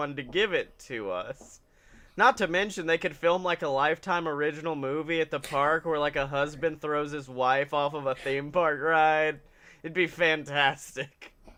to give it to us. Not to mention, they could film, like, a Lifetime original movie at the park where, like, a husband throws his wife off of a theme park ride. It'd be fantastic.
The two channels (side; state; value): both; identical; correlation 1.00